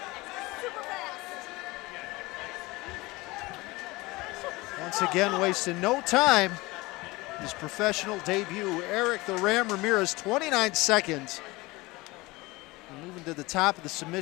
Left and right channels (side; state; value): right; quieter; 22.0 dB